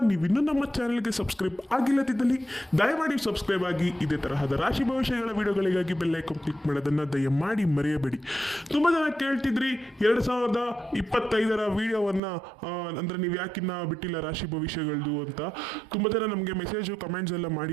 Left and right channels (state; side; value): drops out; left; at 12.2 s